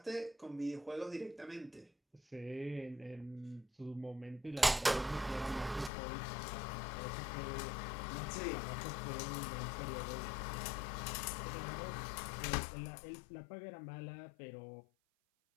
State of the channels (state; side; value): drops out; right; at 5.9 s